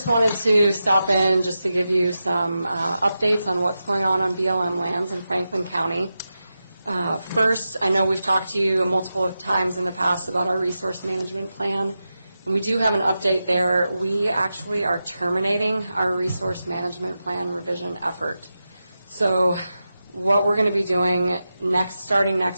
wanted to stop in just to give you some updates on what's going on BLM lands in Franklin County. First, I know we've talked to you multiple times in the past about our resource management plan, and we do have an update there. We actually are terminating our resource management plan revision effort. So what we're going to be doing starting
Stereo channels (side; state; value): both; inverted; correlation -0.91